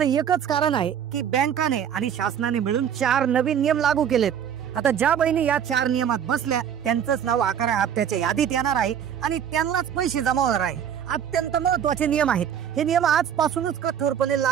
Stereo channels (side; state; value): left; quieter; 8.8 dB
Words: एकच कारण आहे की बँकाने आणि शासनाने मिळून 4 नवीन नियम लागू केलेत। आता ज्या बहिणी या 4 नियमात बसल्या त्यांचंच नाव 11व्या हप्त्याच्या यादीत येणार आहे आणि त्यांनाच पैसे जमा होणार आहे। अत्यंत महत्वाचे नियम आहेत। हे नियम आजपासूनच कठोरपणे